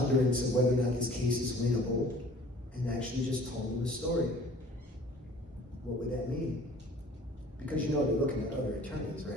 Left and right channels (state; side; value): normal; both; correlation 0.50